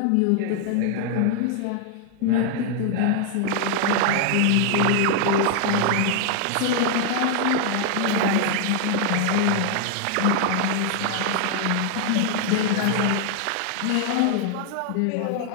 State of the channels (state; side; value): different; both; correlation 0.00